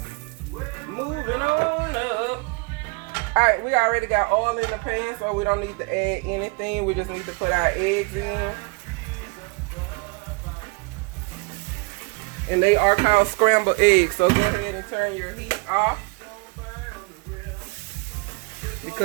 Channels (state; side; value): quieter; left; 30.4 dB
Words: Moving on up. Alright, we already got oil in the pan, so we don't need to add anything. We just need to put our eggs in. And they are called scrambled eggs, so go ahead and turn your heat off.